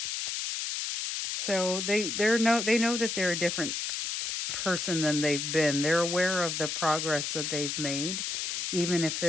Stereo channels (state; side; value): noise; left; hiss, 2 dB below the sound